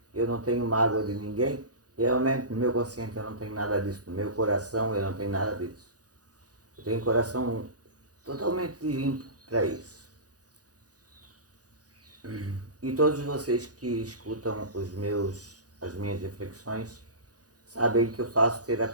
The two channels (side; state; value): left; late; 0.67 ms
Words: eu não tenho mágoa de ninguém. Realmente no meu consciente eu não tenho nada disso, no meu coração eu não tenho nada disso. Eu tenho um coração totalmente limpo para isso. E todos vocês que escutam as minhas reflexões sabem que eu faço